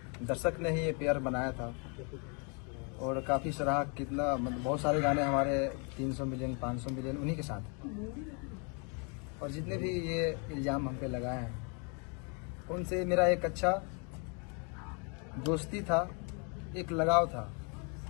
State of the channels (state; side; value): quieter; right; 36.4 dB